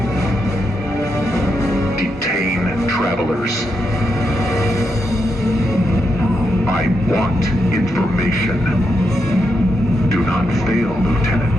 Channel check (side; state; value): both; normal; correlation 0.83